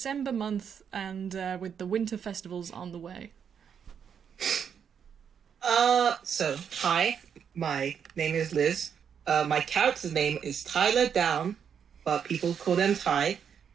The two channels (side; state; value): left; quieter; 7.6 dB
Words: month and with the winter festivals on the way? So, hi, my name is Liz. My character's name is Tyler Down, but people call them Ty.